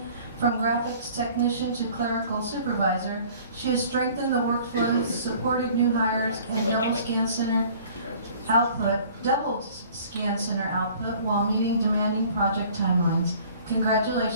from graphics technician to clerical supervisor, she has strengthened the workflows, supported new hires, and double scan center output while meeting demanding project timelines.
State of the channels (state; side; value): inverted; both; correlation -0.51